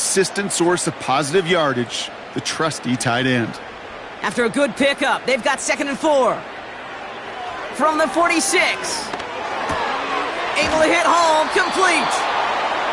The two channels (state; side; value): identical; both; correlation 1.00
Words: source of positive yardage, the trusty tight end. After a good pickup, they've got 2nd and 4. From the 46. Able to hit home, complete.